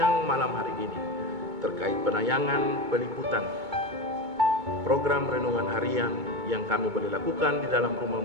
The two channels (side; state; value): left; late; 2.2 ms